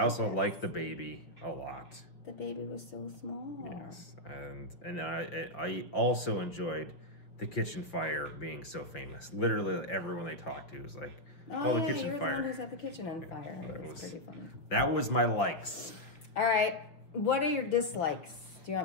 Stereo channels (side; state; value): right; late; 5.9 ms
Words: like the baby a lot. The baby was so small. Yes, and I also enjoyed the kitchen fire being so famous. Literally, everyone they talked to was like, "Oh, the kitchen fire." The one who set the kitchen on fire. That was pretty funny. That was my likes. All right, what are your dislikes? Do you